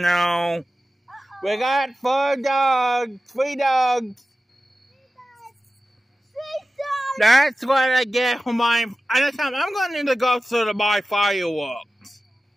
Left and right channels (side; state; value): both; normal; correlation 0.95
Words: We got 4 dogs. 3 dogs. That's what I get for my... I'm going to go to buy fireworks.